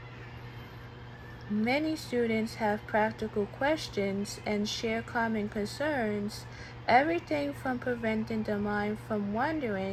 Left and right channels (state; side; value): identical; both; correlation 1.00